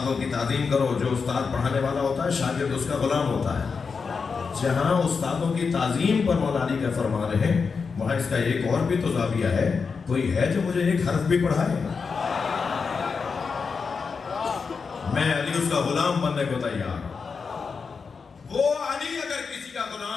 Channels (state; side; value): quieter; right; 5.3 dB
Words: کی تعظیم کرو، جو استاد پڑھانے والا ہوتا ہے شاگرد اس کا غلام ہوتا ہے. جہاں استادوں کی تعظیم پر مولا علی کا فرمان ہے وہاں اس کا ایک اور بھی تو زاویہ ہے. کوئی ہے جو مجھے ایک حرف بھی پڑھائے؟ میں علی اس کا غلام بننے کو تیار. وہ علی اگر کسی کا